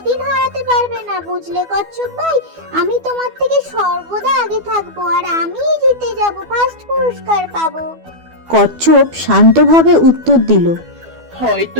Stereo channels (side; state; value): left; late; 12 ms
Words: হারাতে পারবে না, বুঝলে কচ্ছপ ভাই? আমি তোমার থেকে সর্বদা আগে থাকবো আর আমিই জিতে যাব, ফার্স্ট পুরস্কার পাবো। কচ্ছপ শান্তভাবে উত্তর দিল,